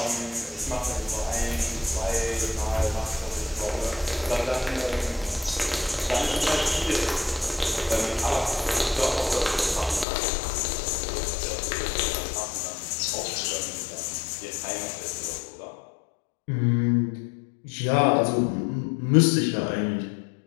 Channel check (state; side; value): drops out; right; at 10.1 s